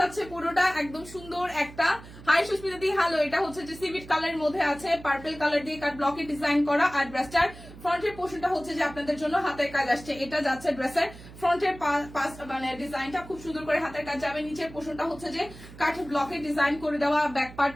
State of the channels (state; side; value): noise; right; hum, 17 dB below the sound